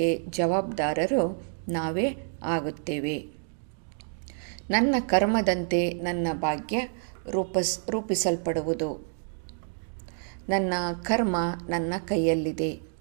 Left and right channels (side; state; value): left; silent; digital silence